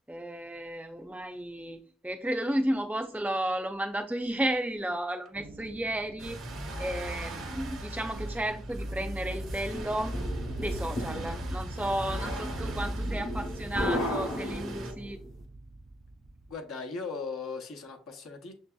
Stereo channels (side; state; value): both; normal; correlation 0.82